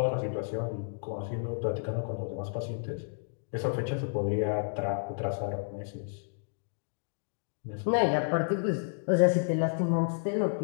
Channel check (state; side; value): silent; right; digital silence